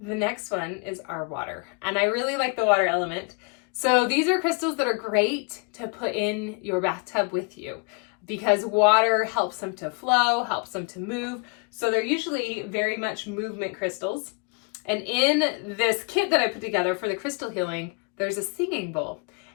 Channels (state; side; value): quieter; right; 32.2 dB